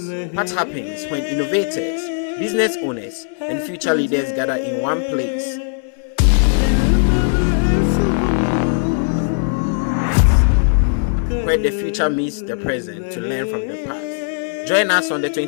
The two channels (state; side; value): silent; right; digital silence